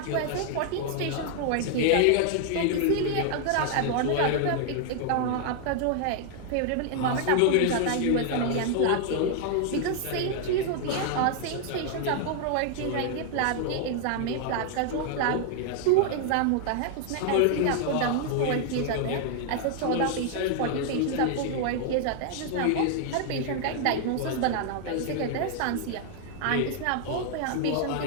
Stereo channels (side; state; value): both; different; correlation 0.00